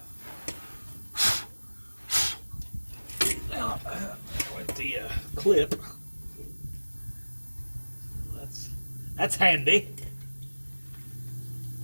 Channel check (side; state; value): both; inverted; correlation -1.00